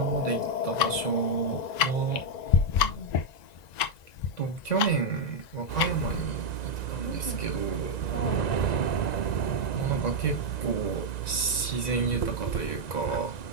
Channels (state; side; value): late; right; 1.9 ms